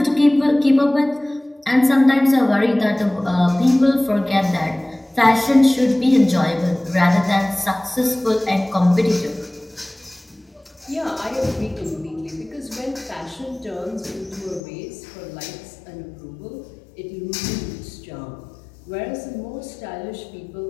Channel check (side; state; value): right; drops out; at 14.6 s